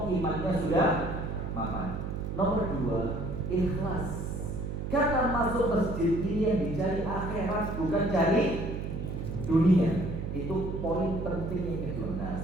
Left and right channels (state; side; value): noise; right; hum, 4 dB below the sound